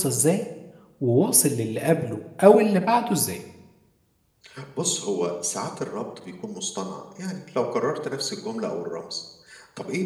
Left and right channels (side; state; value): both; identical; correlation 1.00